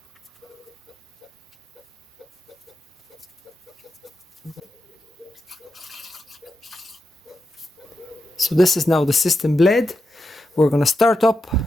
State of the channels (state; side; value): normal; both; correlation 0.87